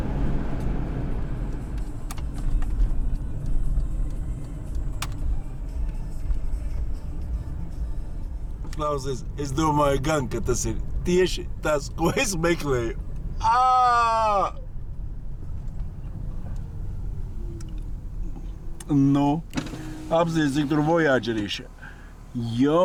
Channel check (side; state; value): both; identical; correlation 1.00